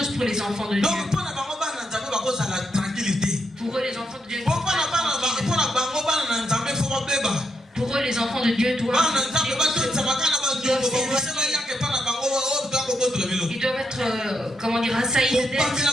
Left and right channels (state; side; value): normal; both; correlation 0.81